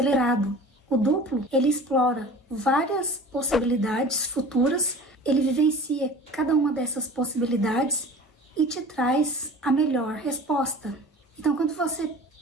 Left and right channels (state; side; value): normal; both; correlation 0.41